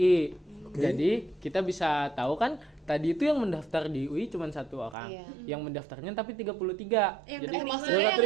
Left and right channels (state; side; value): drops out; left; at 5.0 s